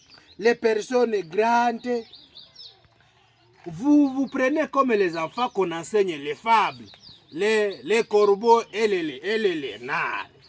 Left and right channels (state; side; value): identical; both; correlation 1.00